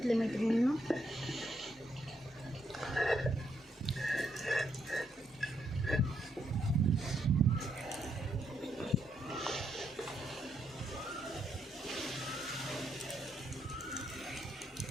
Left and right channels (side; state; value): both; normal; correlation 0.77